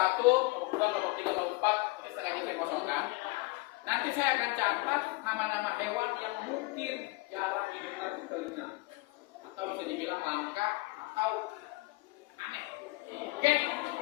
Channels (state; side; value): quieter; right; 23.6 dB